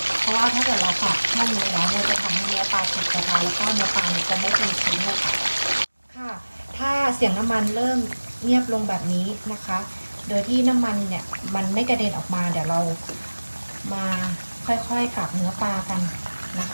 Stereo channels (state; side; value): inverted; both; correlation -1.00